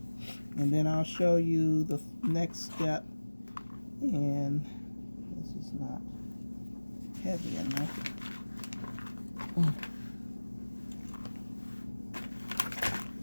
And then I'll show you the next step. And this is not heavy enough.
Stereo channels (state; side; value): inverted; both; correlation -1.00